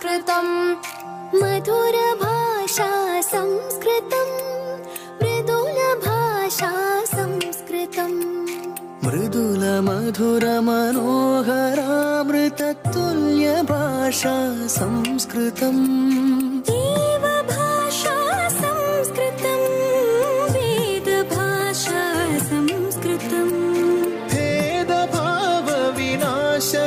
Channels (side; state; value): both; identical; correlation 1.00